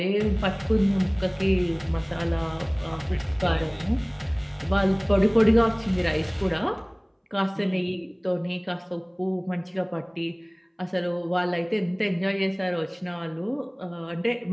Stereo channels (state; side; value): identical; both; correlation 1.00